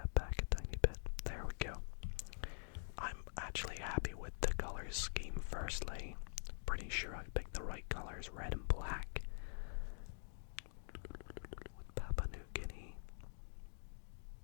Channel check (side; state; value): right; silent; digital silence